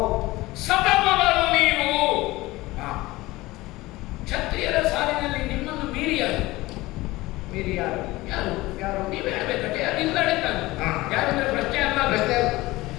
ಸತಮಗಳು ನೀವು ಕ್ಷತ್ರಿಯರ ಸಾಲಿನಲ್ಲಿ ನಿಮ್ಮನ್ನು ಮೀರಿ ಯಾರು? ಮೀರಿ ಯಾರು? ಯಾರು ಯಾರು? ನೀವು ಹೇಳಬೇಕಟ್ಟೆ. ಅದಿಲ್ಲ ಯಾರಂದ್ರೆ ಪ್ರಶ್ನೆ ಅಲ್ಲ, ಪ್ರಶ್ನೆ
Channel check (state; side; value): quieter; right; 19.5 dB